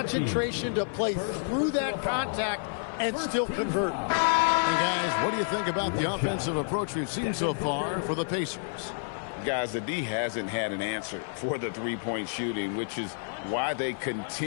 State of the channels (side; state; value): right; silent; 55 dB below the other